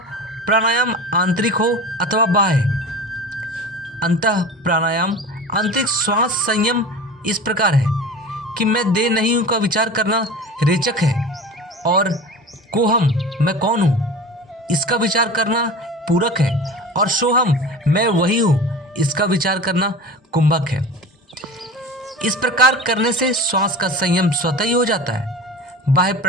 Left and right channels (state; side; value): normal; both; correlation 0.34